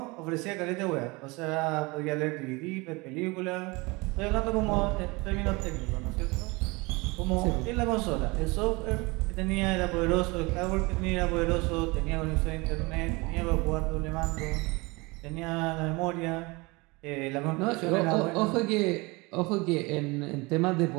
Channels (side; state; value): left; quieter; 25.2 dB